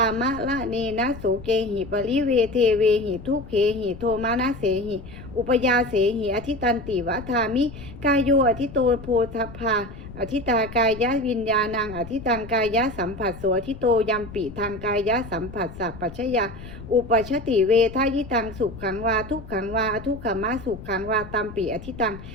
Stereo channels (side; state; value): left; noise; rumble, 14 dB below the sound